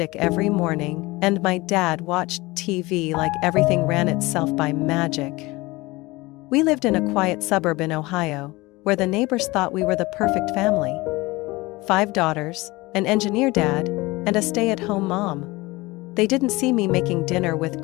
every morning and my dad watched TV like everything ran itself by magic. We lived in a quiet suburb in Ohio, where the neighbors thought we were the perfect family. 5 daughters, an engineer dad, and a stay-at-home mom. They didn't see me making dinner with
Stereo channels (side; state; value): right; quieter; 21.8 dB